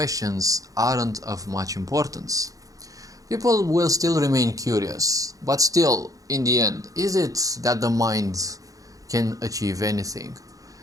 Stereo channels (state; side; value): late; left; 0.17 ms